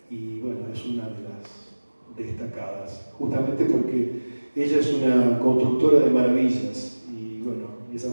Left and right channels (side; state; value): both; inverted; correlation -1.00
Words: y bueno, es una de las destacadas, justamente porque ella es una constructora de maravillas, y bueno,